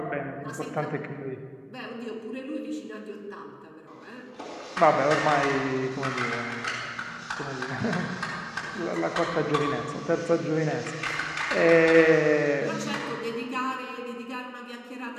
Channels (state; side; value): identical; both; correlation 1.00